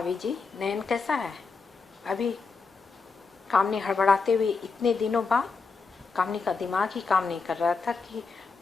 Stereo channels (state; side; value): quieter; right; 4.6 dB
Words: जी, नयन कैसा है? अभी, कामनी हड़बड़ाते हुए, इतने दिनों बाद। कामनी का दिमाग ही काम नहीं कर रहा था कि